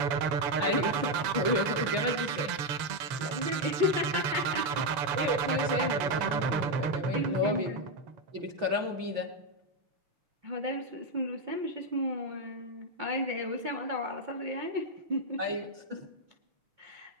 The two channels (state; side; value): late; left; 7.0 ms